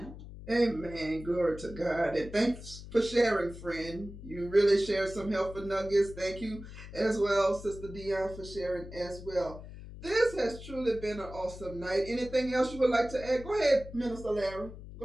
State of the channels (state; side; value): noise; left; hum, 13 dB below the sound